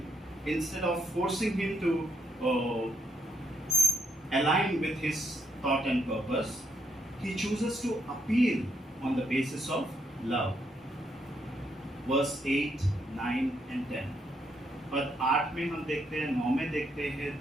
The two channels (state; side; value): normal; both; correlation 0.76